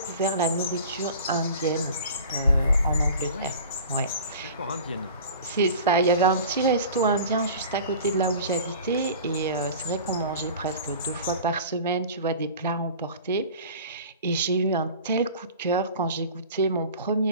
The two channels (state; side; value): inverted; both; correlation -0.40